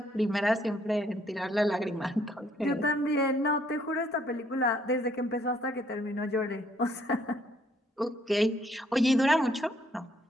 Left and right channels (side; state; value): both; normal; correlation 0.67